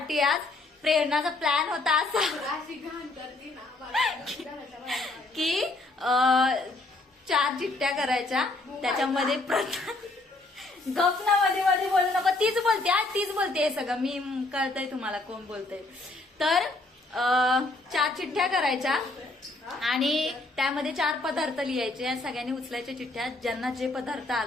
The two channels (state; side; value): quieter; right; 3.0 dB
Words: आज. प्रेरणाचा प्लॅन होता असा की 4 चिठ्ठ्या करायच्या, त्याच्यामध्ये गपना मध्ये मध्ये बोलू नको, तीच बोलते आज, तीच बोलते सगळं, मी कळतंय तुम्हाला कोण बोलतंय. तर 4 चिठ्ठ्या करायच्या आणि त्यामध्ये 4 पदार्थ लिहायचे. सगळ्यांनी उचलायच्या चिठ्ठ्या, ज्यांना जे पदार्थ